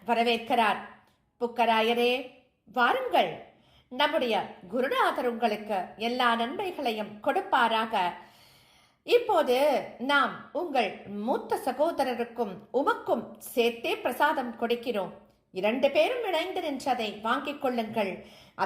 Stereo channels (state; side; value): identical; both; correlation 1.00